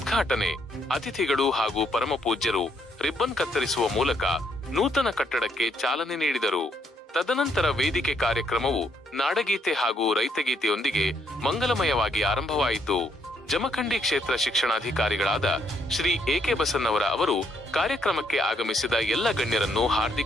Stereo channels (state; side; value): normal; both; correlation 0.72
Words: ಅತಿಥಿಗಳು ಹಾಗೂ ಪರಮಪೂಜ್ಯರು ರಿಬ್ಬನ್ ಕತ್ತರಿಸುವ ಮೂಲಕ ನೂತನ ಕಟ್ಟಡಕ್ಕೆ ಚಾಲನೆ ನೀಡಿದರು. ತದನಂತರ ವೇದಿಕೆ ಕಾರ್ಯಕ್ರಮವು ನಾಡಗೀತೆ ಹಾಗೂ ರೈತಗೀತೆಯೊಂದಿಗೆ ಮಂಗಲಮಯವಾಗಿ ಆರಂಭವಾಯಿತು. ಜಮಖಂಡಿ ಕ್ಷೇತ್ರ ಶಿಕ್ಷಣಾಧಿಕಾರಿಗಳಾದ ಶ್ರೀ AK ಬಸನ್ನವರ ಅವರು ಕಾರ್ಯಕ್ರಮಕ್ಕೆ ಆಗಮಿಸಿದ ಎಲ್ಲ ಗಣ್ಯರನ್ನು